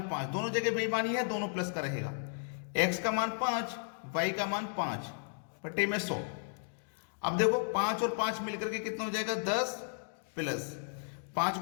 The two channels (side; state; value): right; silent; digital silence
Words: 5, दोनों जगह बेईमानी है, दोनों प्लस का रहेगा। x का मान 5, y का मान 5 बटे में 100। अब देखो 5 और 5 मिलकर के कितना हो जाएगा 10 प्लस 5